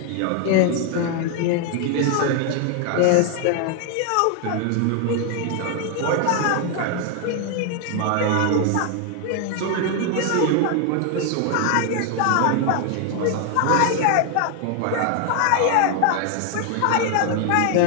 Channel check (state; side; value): different; both; correlation 0.00